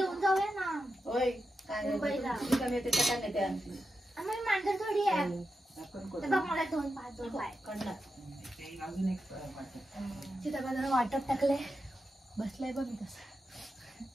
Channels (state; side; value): normal; both; correlation 0.88